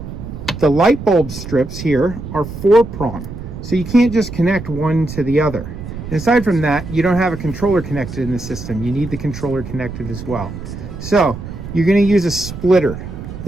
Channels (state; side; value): noise; right; rumble, 10 dB below the sound